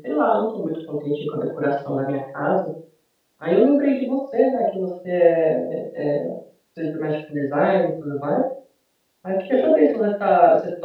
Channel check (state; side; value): identical; both; correlation 1.00